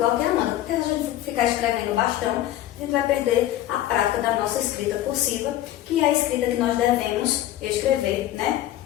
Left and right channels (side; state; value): right; quieter; 13.5 dB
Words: que a Amanda. Porque se a gente ficar escrevendo bastão, a gente vai perder a prática da nossa escrita cursiva, que é a escrita que nós devemos escrever, né?